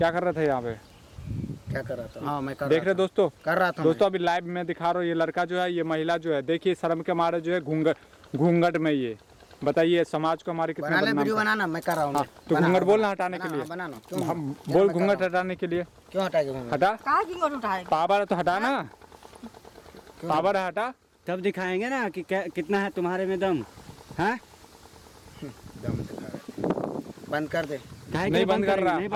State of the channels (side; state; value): both; identical; correlation 1.00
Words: कर रहे थे यहाँ पे? क्या कर रहा था? हाँ, मैं कर देख रहे दोस्तों, कर रहा था दोस्तों अभी लाइव में दिखा रहा हूँ। ये लड़का जो है, ये महिला जो है, देखिए शर्म के मारे जो है घूंघट में ये बताइए समाज को हमारे कितना बदनाम। वीडियो बनाना मैं कर रहा हूँ। तो घूंघट बोलना हटाने के लिए। बनाना हम बोल घूंघट हटाने के लिए। क्यों हटाएगा घूंघट? हटा। कहाँ घूंघट उठाएगा? पावर तो हटा ना, पावर हटा, तब दिखाएंगे ना कि कितना है तुम्हारे में दम। हाँ, दम दिखा। बंद कर दे। नहीं बंद कर रहा। नहीं